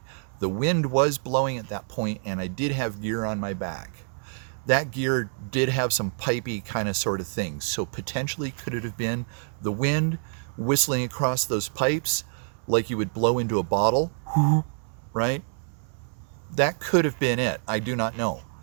The wind was blowing at that point, and I did have gear on my back. That gear did have some pipey kind of sort of things. So potentially could it have been the wind whistling across those pipes like you would blow into a bottle, right? That could have been it. I do not know.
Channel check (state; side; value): silent; left; digital silence